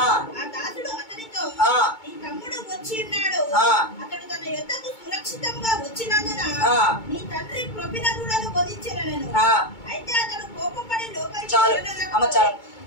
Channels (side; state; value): right; late; 2.2 ms